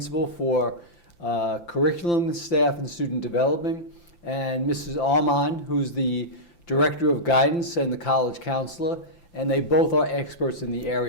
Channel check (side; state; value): right; late; 5.8 ms